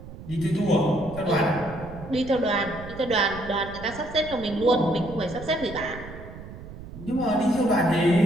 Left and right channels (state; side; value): noise; right; rumble, 14 dB below the sound